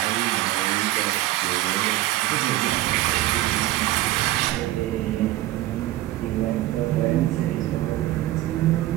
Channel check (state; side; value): quieter; left; 15.8 dB